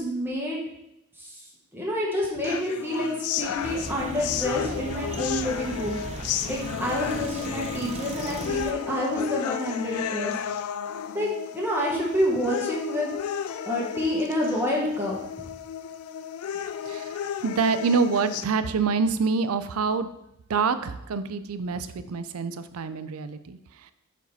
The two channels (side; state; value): both; normal; correlation 0.25